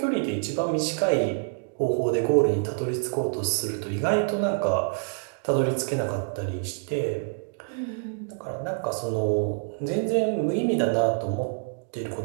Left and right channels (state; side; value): silent; left; 60 dB below the other